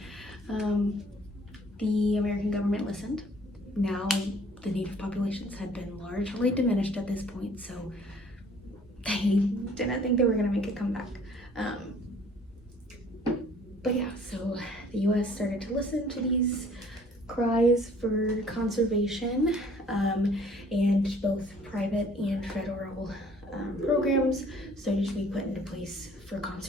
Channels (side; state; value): both; normal; correlation 0.56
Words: the American government listened. Now, the native populations had been largely diminished at this point, so they didn't think they were going to make a comeback. But yeah, so the US started to listen to these cries for conservation, and both private and federal programs started to be put into place for